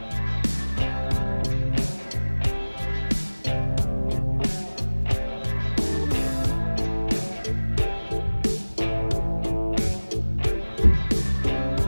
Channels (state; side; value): inverted; both; correlation -1.00